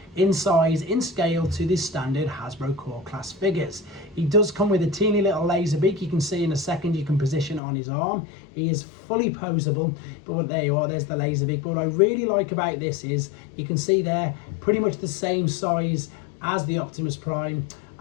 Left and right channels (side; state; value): right; drops out; at 7.6 s